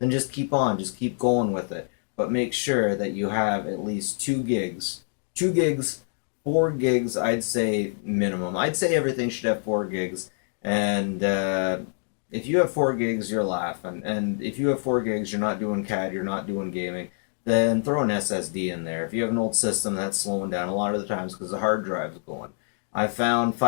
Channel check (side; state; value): right; silent; 61 dB below the other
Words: just keep on, just keep going with it. But make sure that you have at least 2 gigs. 2 gigs, 4 gigs, I'd say minimum. I'd say everything should have 4 gigs. And if you have 4 gigs, you're laughing. And if you have 4 gigs, you're not doing CAD, you're not doing gaming, then throw an SSD in there. If you have an old system that's slowing down a lot of the times because the hard drive's going. I found